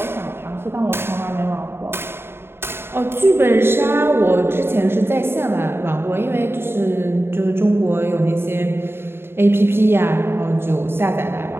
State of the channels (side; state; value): left; late; 0.11 ms